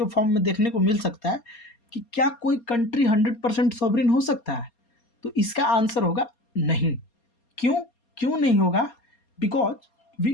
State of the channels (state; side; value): late; right; 4.3 ms